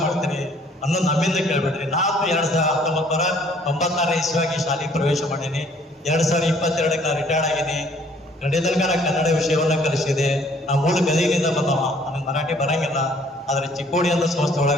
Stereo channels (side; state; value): both; normal; correlation 0.59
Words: ಮಾಡ್ತೀರಿ ಅನ್ನೋದು ನಮ್ಮಿಂದ ಕೇಳ್ಬೇಡ್ರಿ. ನಾನು 1996 ಇಸ್ವಿಯಾಗಿ ಶಾಲೆಗೆ ಪ್ರವೇಶ ಮಾಡೀನಿ. 2022ಕ್ಕೆ ನಾನು ರಿಟೈರ್ಡ್ ಆಗೀನಿ. ಕಡೆ ತನಕ ಕನ್ನಡ ವಿಷಯವನ್ನ ಕಲಿಸಿದೆ. ನಾ ಮೂಲ ಗದಗಿನಿಂದ ಬಂದವ, ನನಗೆ ಮರಾಠಿ ಬರಂಗಿಲ್ಲ. ಆದ್ರೆ ಚಿಕ್ಕೋಡಿ ಅಂತ ಸಂಸ್ಥೆ